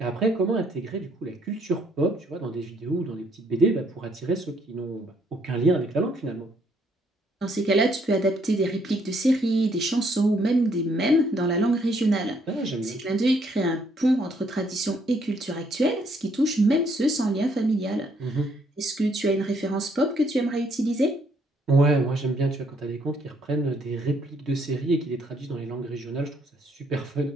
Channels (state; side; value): normal; both; correlation 0.69